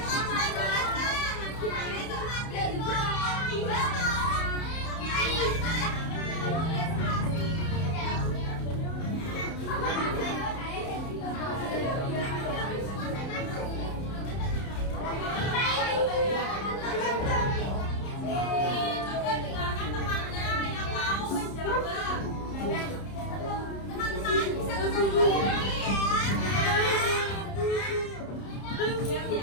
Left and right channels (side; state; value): right; late; 30 ms